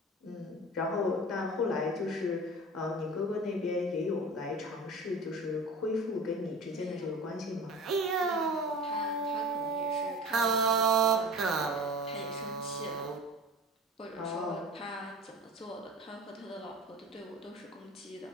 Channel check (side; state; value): both; normal; correlation 0.37